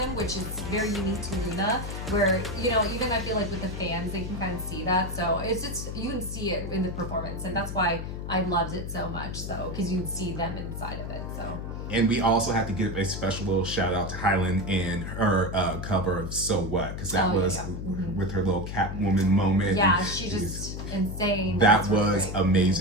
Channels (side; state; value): left; noise; hum, 6 dB below the sound